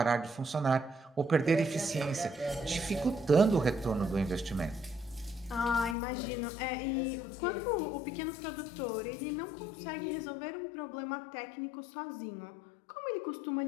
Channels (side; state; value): right; drops out; at 6.0 s